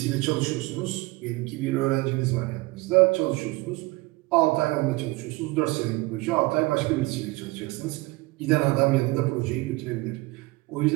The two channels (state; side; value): quieter; left; 22.3 dB